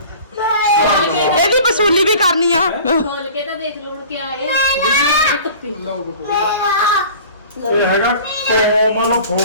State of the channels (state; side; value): inverted; both; correlation -0.43